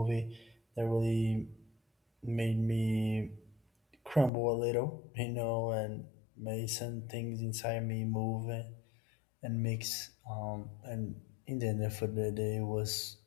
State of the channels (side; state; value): right; drops out; at 4.3 s